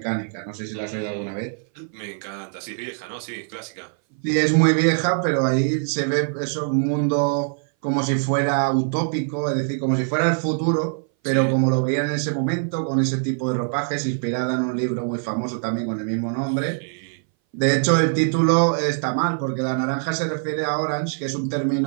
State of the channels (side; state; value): left; silent; 59 dB below the other